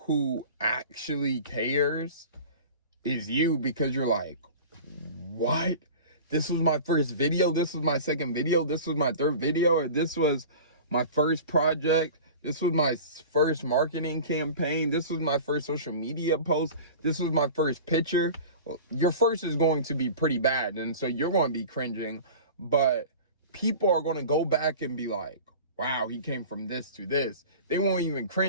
actually cares is you, because you're like, what? This was my first video, this was my second video, this was my third video, or this was my first project, this was my first marketing campaign, this was my first social media post, this was my first picture. Well, your first is going to be pretty bad, and so you're going to be cringing, but people are going to go back and be like, wow, he came from this to this. They won't even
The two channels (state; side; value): inverted; both; correlation -0.37